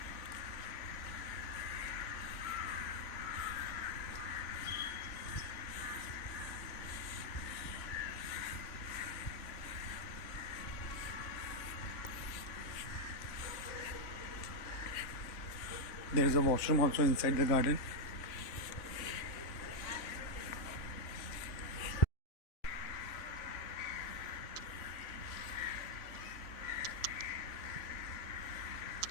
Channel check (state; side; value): late; right; 3.5 ms